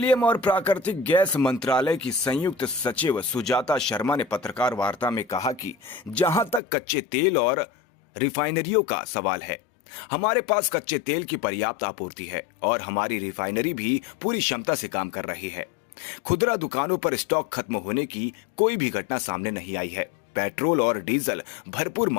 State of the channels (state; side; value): drops out; right; at 6.6 s